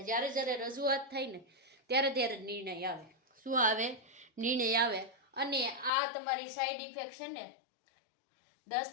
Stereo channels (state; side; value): drops out; right; at 5.9 s